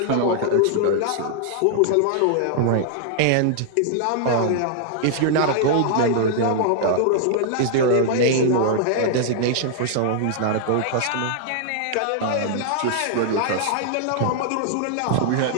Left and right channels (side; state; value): both; different; correlation -0.01